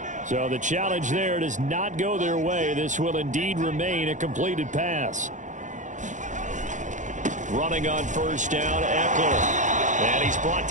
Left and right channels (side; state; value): left; late; 0.36 ms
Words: So the challenge there does not go their way. This will indeed remain a completed pass. Running on first down, Eckler. And he's brought